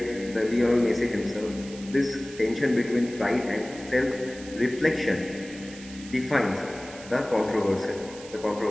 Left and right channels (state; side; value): noise; right; hiss, 17 dB below the sound